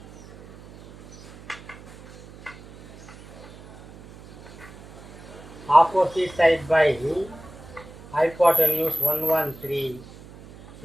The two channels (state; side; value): noise; right; hum, 19 dB below the sound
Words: opposite side by hypotenuse 113.